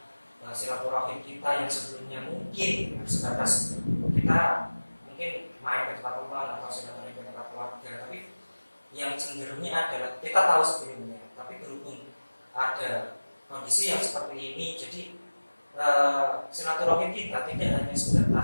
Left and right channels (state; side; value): inverted; both; correlation -1.00